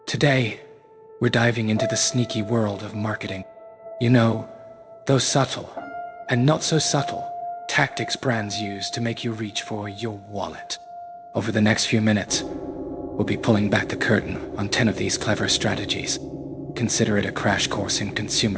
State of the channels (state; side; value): identical; both; correlation 1.00